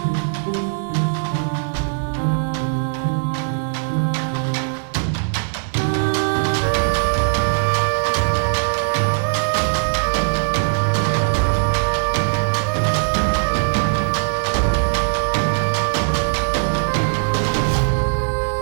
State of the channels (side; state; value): left; silent; 59 dB below the other